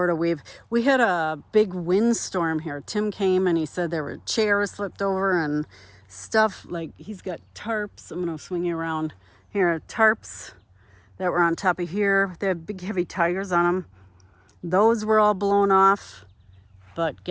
weave. We had a big windstorm here. Tim came and he said there were chairs flipped over and stuff. Like, he's got tarps. I'm going to swing you around here. Tarps that were on top of here. They had big heavy tires on them. Those were all blown off. But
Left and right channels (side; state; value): both; identical; correlation 1.00